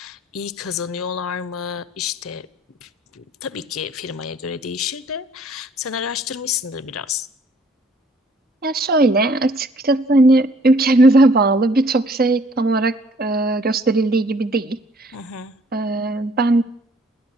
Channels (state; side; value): normal; both; correlation 0.59